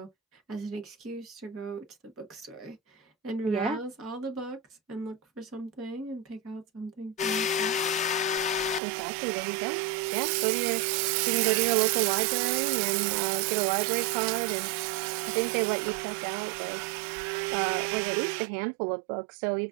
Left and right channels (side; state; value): left; drops out; at 8.8 s